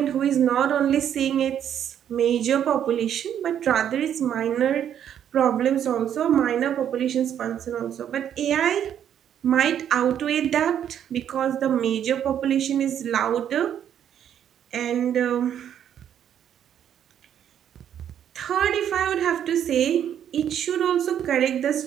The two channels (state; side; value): quieter; left; 9.6 dB